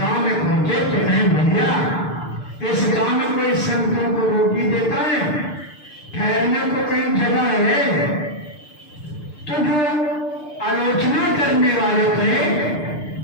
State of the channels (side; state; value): right; late; 6.7 ms